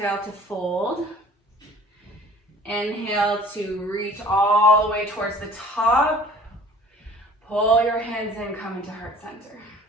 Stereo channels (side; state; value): both; normal; correlation 0.49